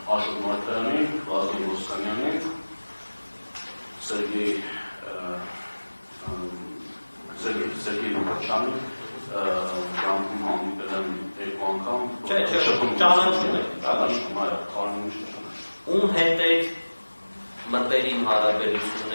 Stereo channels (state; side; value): inverted; both; correlation -1.00